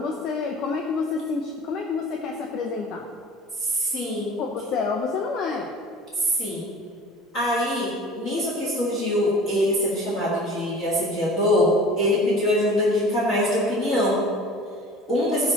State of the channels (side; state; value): both; normal; correlation 0.43